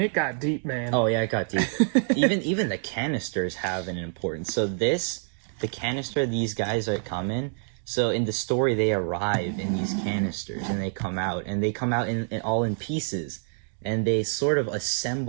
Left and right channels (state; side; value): silent; left; digital silence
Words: got deep, man. Oh yeah, it got deep. even the canisters have an importance. So the canister these guys are come in. So in the story, they arrive in these canisters, and they come out in all in pieces, and they sort of